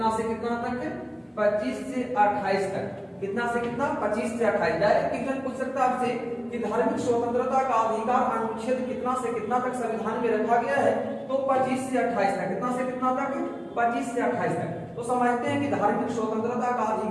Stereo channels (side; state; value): both; identical; correlation 1.00